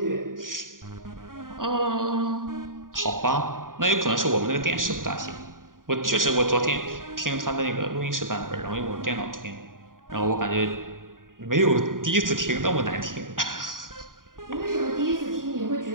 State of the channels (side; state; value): left; late; 0.90 ms